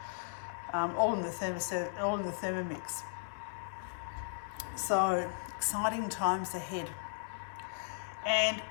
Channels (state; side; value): silent; right; digital silence